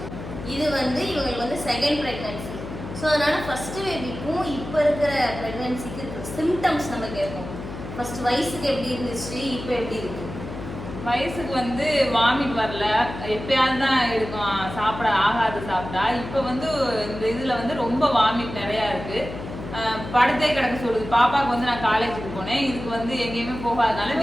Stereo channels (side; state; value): left; noise; hum, 10 dB below the sound